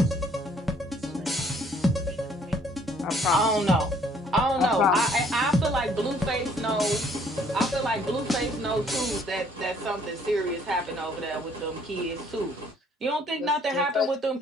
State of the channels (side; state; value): both; normal; correlation 0.61